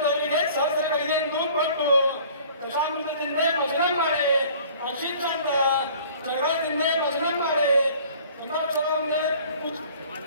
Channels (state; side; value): inverted; both; correlation -0.50